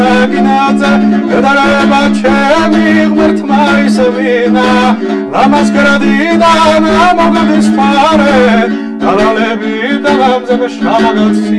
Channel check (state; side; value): identical; both; correlation 1.00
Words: გადარება ჩემი ღმერთმა ისევინა ლამას გრადიდან მოგდის ფარე დალალები და გამზები